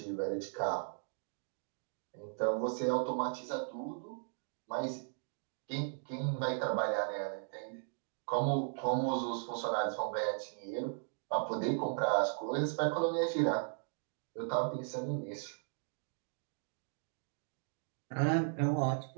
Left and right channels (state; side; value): silent; left; digital silence